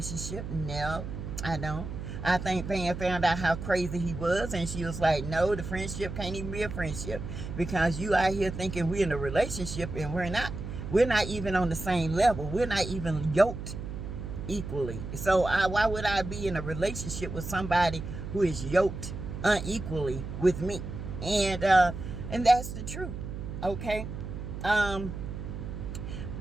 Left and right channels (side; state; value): right; noise; hum, 7 dB below the sound